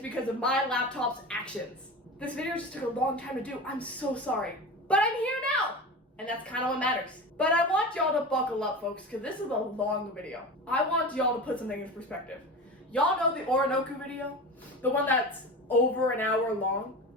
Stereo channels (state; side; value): normal; both; correlation 0.29